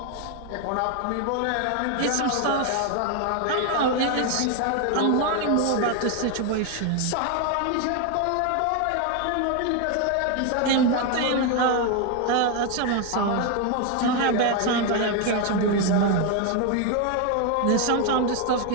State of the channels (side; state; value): both; different; correlation 0.01